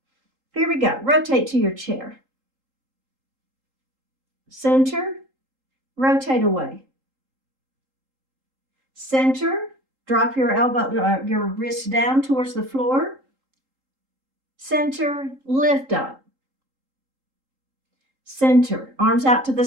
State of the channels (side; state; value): left; late; 3.8 ms